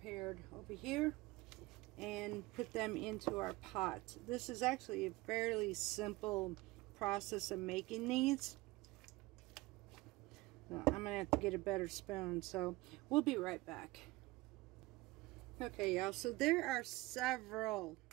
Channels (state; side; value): quieter; left; 20.9 dB